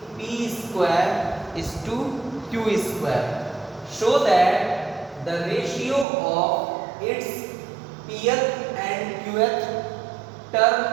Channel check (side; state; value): left; drops out; at 6.1 s